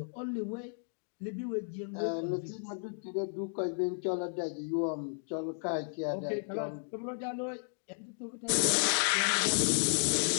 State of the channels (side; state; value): right; silent; digital silence